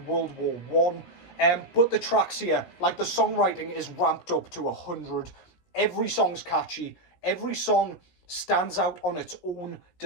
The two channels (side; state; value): right; late; 16 ms